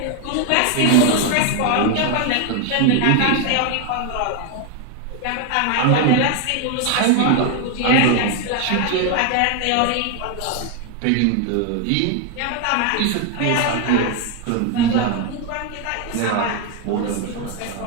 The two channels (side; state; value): both; different; correlation 0.01